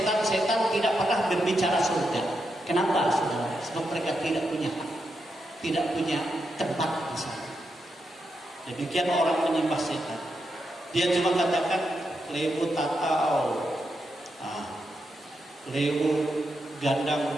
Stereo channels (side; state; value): both; normal; correlation 0.84